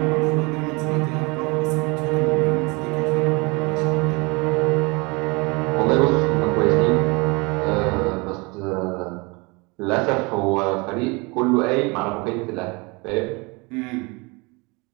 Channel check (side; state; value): left; quieter; 27.6 dB